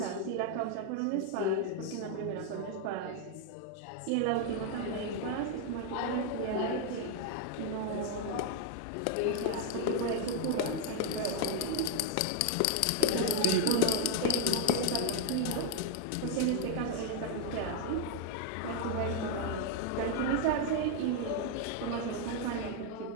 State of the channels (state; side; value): different; both; correlation 0.00